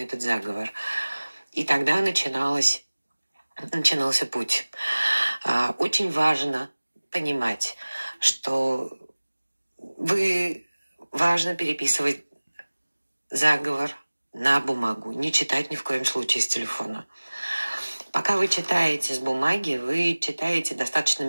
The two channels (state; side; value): inverted; both; correlation -1.00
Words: заговор. И тогда начинался путь. Очень важно понимать, что важно переписывать заговор на бумагу, не читать ни в коем случае с телефона. Пока вы читаете с бумаги, вы читаете достаточно